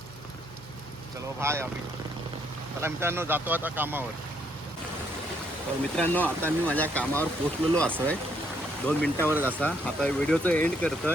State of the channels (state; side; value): normal; both; correlation 0.71